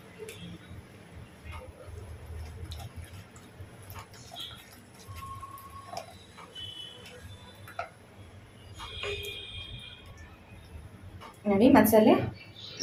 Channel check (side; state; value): both; identical; correlation 1.00